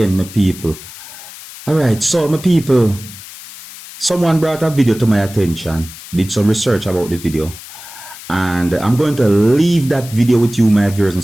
my people. Alright, so my people, someone brought a video to my attention, did some research about the video, and I'm going to leave that video with you, my viewers and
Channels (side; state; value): left; noise; hiss, 16 dB below the sound